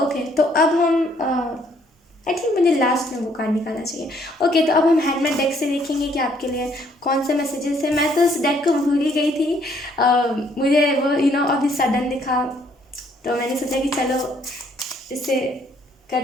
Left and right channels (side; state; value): both; normal; correlation 0.66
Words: तो अब हम आई थिंक मुझे लास्ट में वो कार्ड निकालना चाहिए। ओके, तो अब हम हैंडमेड डेक से देखेंगे कि आपके लिए कौन से मैसेजेस है। मैं तो उस डेक को भूल ही गई थी। मुझे वो अभी सडन दिखा, तो मैंने सोचा कि चलो इससे